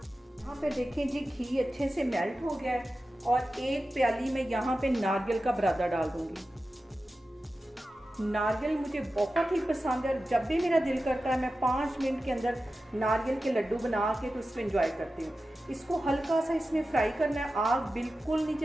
यहाँ पे देखें जी, घी अच्छे से मेल्ट हो गया है और एक प्याली में यहाँ पे नारियल का बुरादा डाल दूंगी। नारियल मुझे बहुत ही पसंद है और जब भी मेरा दिल करता है मैं 5 मिनट के अंदर नारियल के लड्डू बना के तो इसको एंजॉय करती हूँ। इसको हल्का सा इसमें फ्राई करना है। आग बिल्कुल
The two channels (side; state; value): both; normal; correlation 0.93